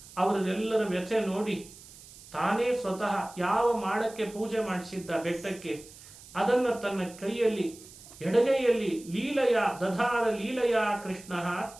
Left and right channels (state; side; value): noise; right; hiss, 19 dB below the sound